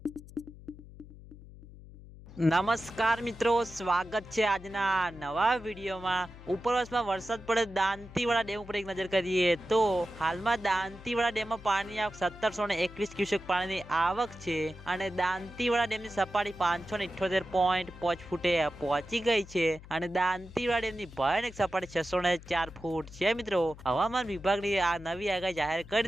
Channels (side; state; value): left; noise; hum, 18 dB below the sound